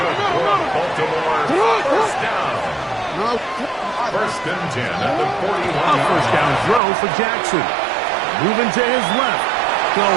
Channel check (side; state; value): left; drops out; at 6.8 s